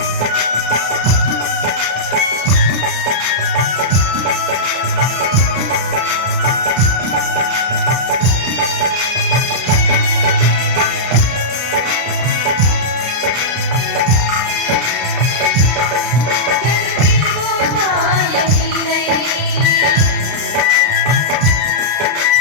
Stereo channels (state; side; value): late; left; 33 ms